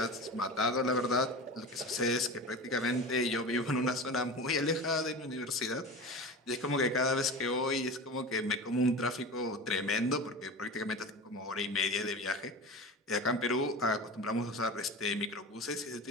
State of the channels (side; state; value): both; normal; correlation 0.30